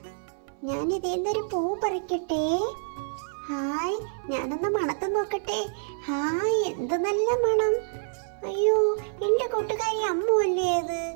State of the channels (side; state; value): left; silent; 60 dB below the other